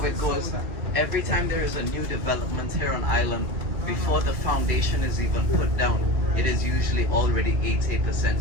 it goes. Every time there is a new development here on island, before the foundation is even put down, it is usually already 80%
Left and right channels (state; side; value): late; left; 2.3 ms